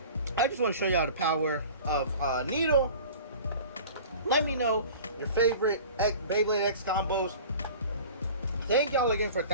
I just want to show y'all the power of Needle. Let me know your favorite Beyblade X combos. Thank y'all again for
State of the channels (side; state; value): both; inverted; correlation -0.41